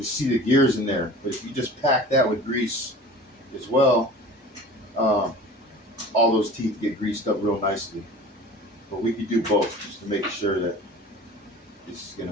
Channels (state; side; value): normal; both; correlation 0.40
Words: see the gears in there. But if you just pack that with grease as well, uh, all those teeth get greased up real nicely. But we could do both just to make sure that this is going